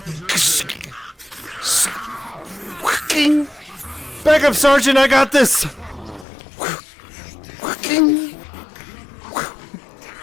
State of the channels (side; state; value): right; drops out; at 6.2 s